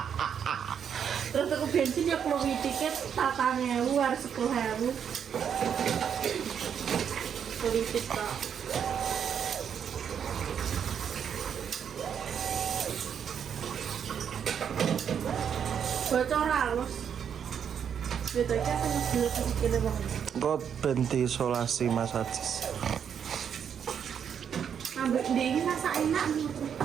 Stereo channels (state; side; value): quieter; left; 7.9 dB